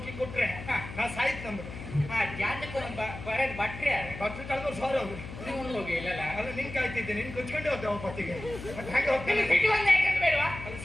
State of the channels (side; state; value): left; noise; hum, 11 dB below the sound